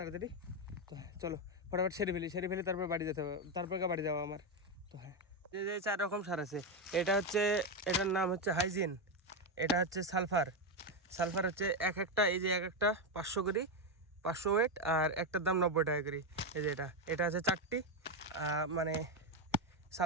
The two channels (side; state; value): both; normal; correlation 0.07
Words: তো হ্যাঁ চলো ফটাফট সেরে ফেলি তারপর বাড়ি যেতে হবে, তারপর বাড়ি যাওয়া আমার। তো হ্যাঁ যে 4 রকম সার আছে, এটা হচ্ছে, এটার নাম হচ্ছে হাইজিন, এটা হচ্ছে সালফার। সালফার হচ্ছে একটা, এই যে একটা 500 করে, 500 ওয়েট, আর একটার দাম 90 টাকা করে। এই যে এটা আছে 4টি, মানে